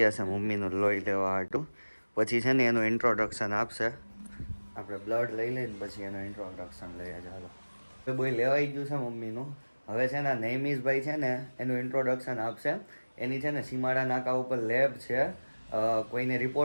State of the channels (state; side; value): inverted; both; correlation -1.00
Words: છે મમ્મીનું લોહી લેવા હાટું. પછી છે ને એનું ઇન્ટ્રોડક્શન આપશે. આપણે બ્લડ લઈ લઈને પછી એનું ઇન્ટ્રોડક્શન લઈએ. ચાલો, બોય લેવાઈ ગયું છે મમ્મીનું. હવે છે ને નૈમિષભાઈ છે ને એનું ઇન્ટ્રોડક્શન આપશે. એની છે ને સીમાડા નાકા ઉપર લેબ છે. કોઈને